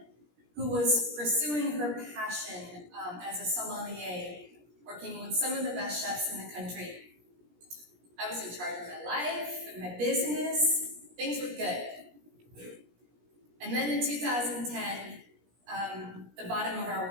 who was pursuing her passion as a sommelier, working with some of the best chefs in the country. I was in charge of my life and my business. Things were good. And then in 2010, the bottom of our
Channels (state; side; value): late; left; 17 ms